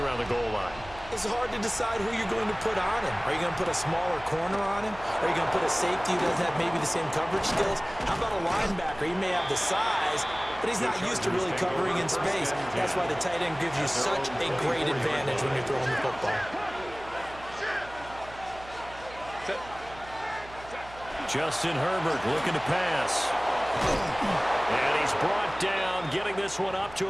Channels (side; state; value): right; noise; hum, 18 dB below the sound